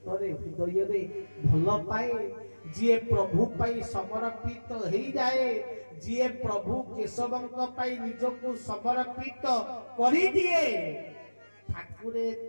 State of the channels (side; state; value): both; inverted; correlation -1.00